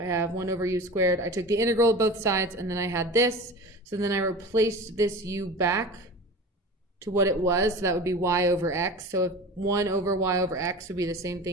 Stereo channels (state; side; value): normal; both; correlation 0.34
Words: have 1 over u squared. I took the integral of both sides, and then I had this. So then I replaced this u back to what it was. So that would be y over x. So if 1 over y over x would be the same